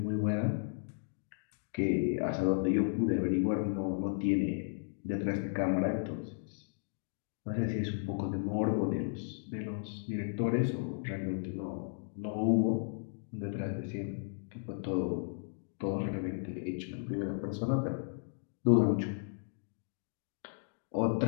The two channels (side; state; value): right; silent; digital silence